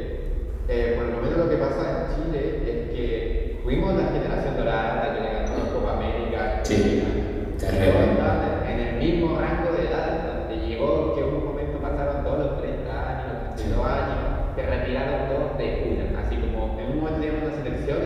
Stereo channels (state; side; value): identical; both; correlation 1.00